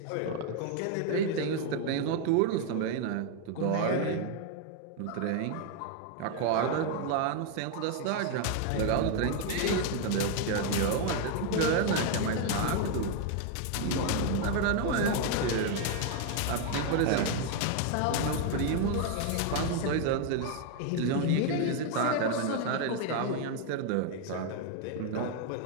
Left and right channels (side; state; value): both; different; correlation 0.01